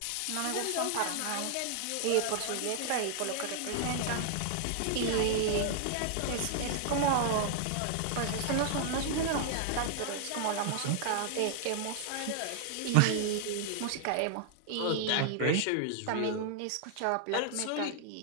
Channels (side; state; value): both; different; correlation 0.00